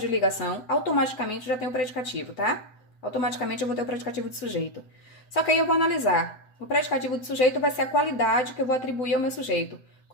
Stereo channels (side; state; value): right; late; 7.8 ms